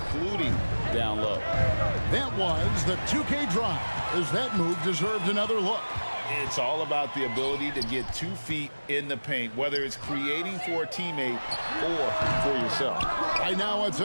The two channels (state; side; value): inverted; both; correlation -1.00